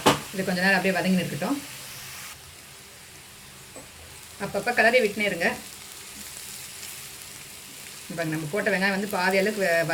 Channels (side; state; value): both; identical; correlation 1.00